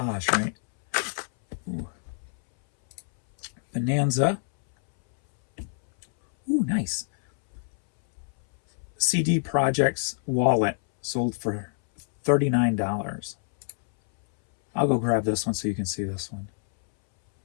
right? Ooh. Bonanza. Ooh, nice. CD Projects wallet sold for $39. I'll go grab this one so you can see this one.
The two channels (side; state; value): right; silent; 61 dB below the other